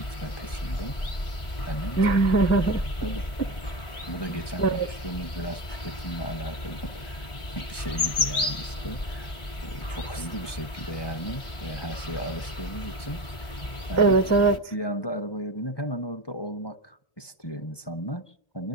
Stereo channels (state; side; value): late; right; 1.4 ms